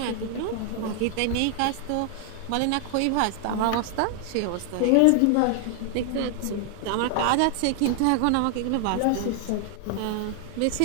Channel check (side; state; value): both; different; correlation 0.00